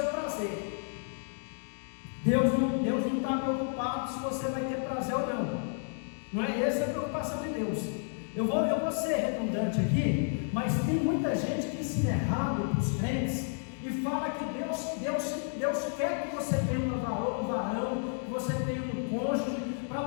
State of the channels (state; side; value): silent; right; 57 dB below the other